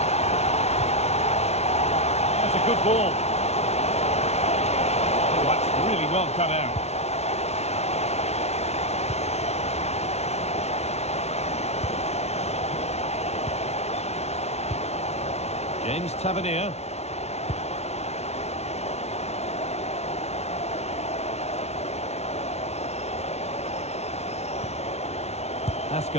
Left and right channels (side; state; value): right; late; 0.31 ms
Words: That's a good ball. Oh, that's really well cut out. James Tavernier.